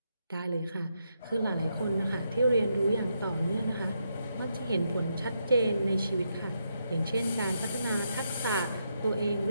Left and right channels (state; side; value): inverted; both; correlation -0.81